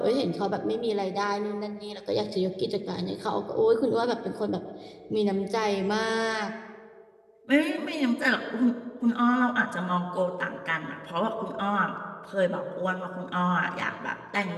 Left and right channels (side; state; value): both; identical; correlation 1.00